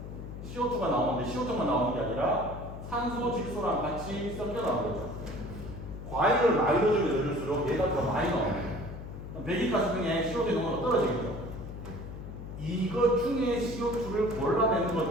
CO2가 나오는데 CO2만 나오는 게 아니라 산소, 질소랑 같이 섞여 나오는 거죠. 과일을 많이 넣어주면 넣을수록 얘가 더 많이 나와요. 배기가스 중에 CO2 농도가 떨어지겠죠. 이것 중에 CO2를 골라내는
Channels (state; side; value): noise; left; hum, 10 dB below the sound